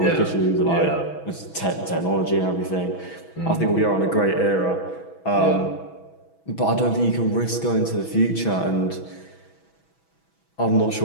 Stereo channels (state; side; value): late; right; 6.1 ms